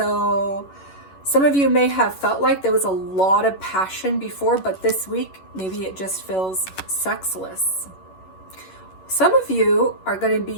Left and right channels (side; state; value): right; late; 11 ms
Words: some of you may have felt like there was a lot of passion before, but this week, maybe it just feels sexless. Some of you are going to